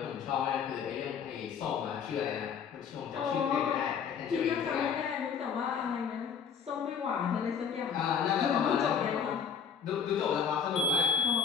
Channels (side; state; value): right; quieter; 6.9 dB